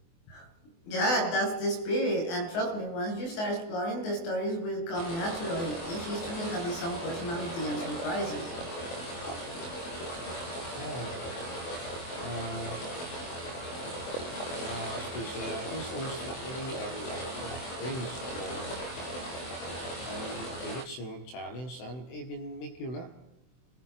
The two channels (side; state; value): right; late; 24 ms